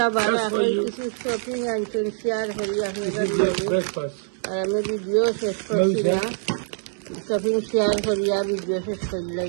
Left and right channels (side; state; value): left; silent; 62 dB below the other